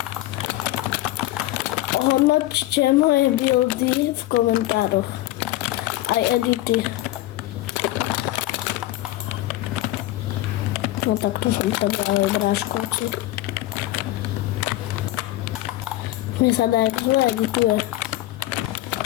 Ohodnoťte moje buildy v komentároch. Aj edity. No tak tu som povedal aj bráškovci. Mne sa dá, jak zle edituje.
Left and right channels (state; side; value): quieter; right; 16.0 dB